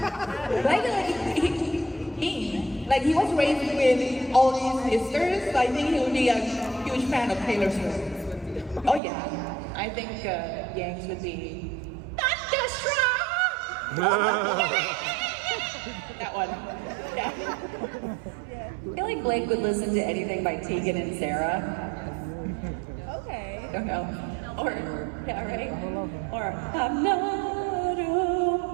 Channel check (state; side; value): drops out; left; at 9.0 s